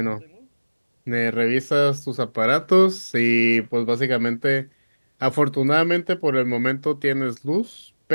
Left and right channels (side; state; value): both; inverted; correlation -1.00